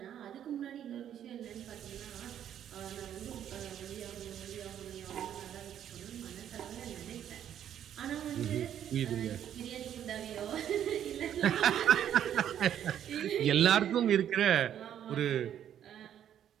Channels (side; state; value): left; quieter; 10.1 dB